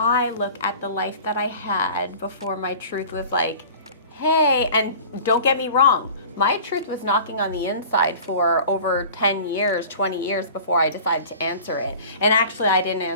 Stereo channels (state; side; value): inverted; both; correlation -0.41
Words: look at the life that I had before my truth was hey, and don't get me wrong, my truth was knocking on the inside for over 10 years, 20 years before I decided to answer it. And actually, I didn't